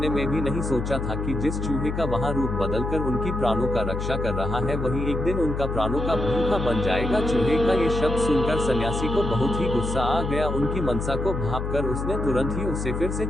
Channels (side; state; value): left; noise; hum, 3 dB below the sound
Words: में भी नहीं सोचा था कि जिस चूहे का वहां रूप बदलकर उनकी प्राणों का रक्षा कर रहा है वही एक दिन उनका प्राणों का भूखा बन जाएगा। चूहे का ये शब्द सुनकर सन्यासी को बहुत ही गुस्सा आ गया। उनकी मनसा को भांपकर उसने तुरंत ही उसे फिर से